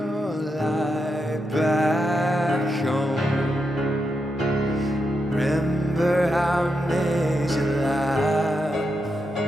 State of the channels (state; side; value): normal; both; correlation 0.84